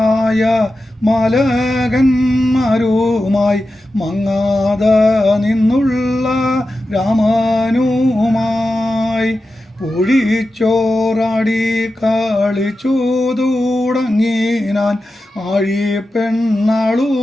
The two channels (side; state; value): both; normal; correlation 0.92